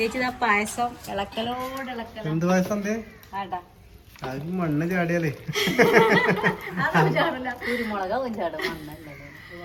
ആ പായസം ഇളക്കലോട് ഇളക്കലോ. എന്ത് പായസം ആടാ മണ്ണ് ചാടിയാലേ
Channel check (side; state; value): both; identical; correlation 1.00